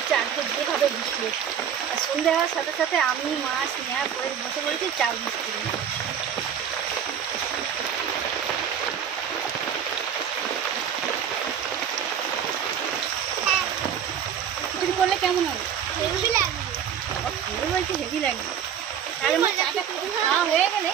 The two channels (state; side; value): quieter; left; 8.5 dB